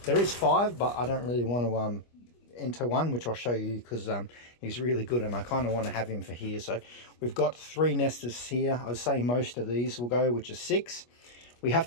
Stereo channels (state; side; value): late; right; 25 ms